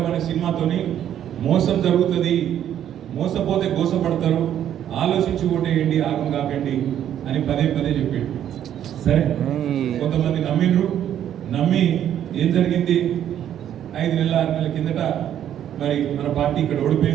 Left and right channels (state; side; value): quieter; left; 10.5 dB